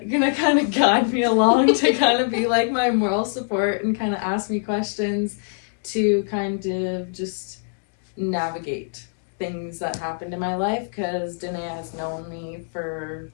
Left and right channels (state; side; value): silent; right; digital silence